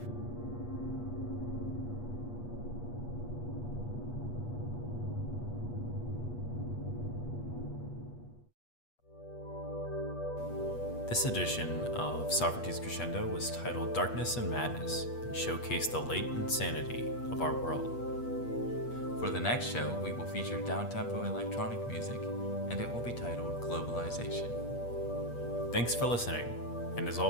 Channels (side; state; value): right; late; 8.4 ms